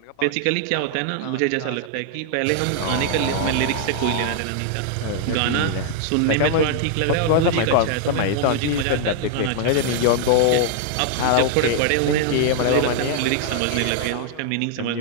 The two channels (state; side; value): different; both; correlation 0.00